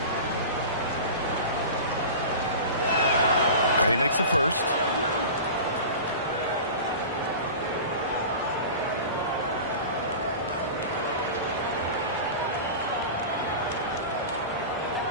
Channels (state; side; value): inverted; both; correlation -0.33